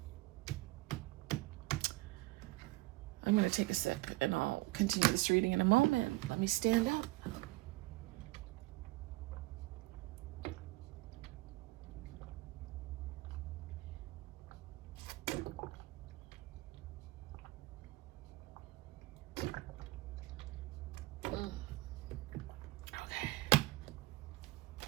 going to take a sip and I'll continue this reading in a moment. Let me stand up.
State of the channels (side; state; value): left; quieter; 20.3 dB